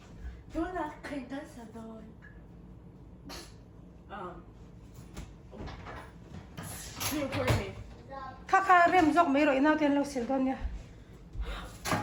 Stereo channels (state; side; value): identical; both; correlation 1.00